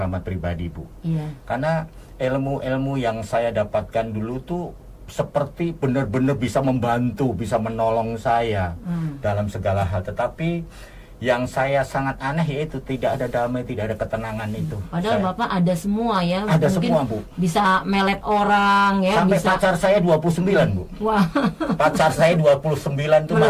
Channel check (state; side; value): identical; both; correlation 1.00